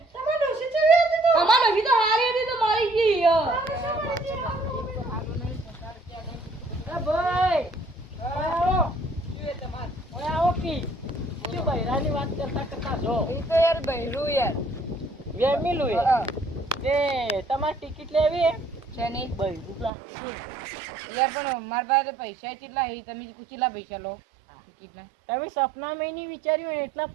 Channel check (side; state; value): left; drops out; at 19.9 s